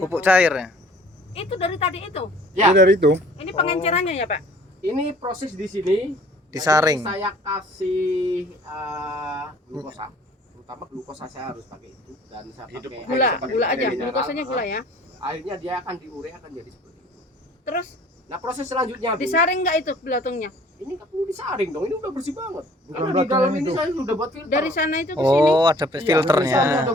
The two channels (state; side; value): normal; both; correlation 0.53